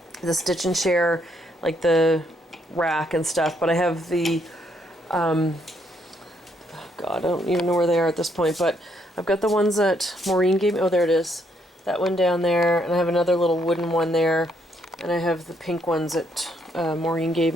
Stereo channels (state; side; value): normal; both; correlation 0.72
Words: the Stitch and Share, like the rack and stuff, but I have the oh god, I don't even know where they are at this point, but I've got the ones that Maureen gave me. Oh, there it is. That one down there, and I have another little wooden one there, and I have the pink ones that Maureen gave